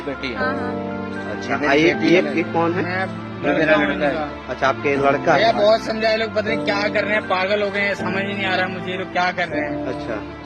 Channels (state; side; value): identical; both; correlation 1.00